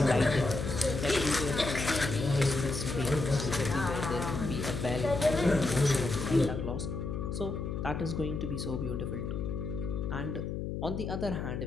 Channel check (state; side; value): noise; left; hum, 4 dB below the sound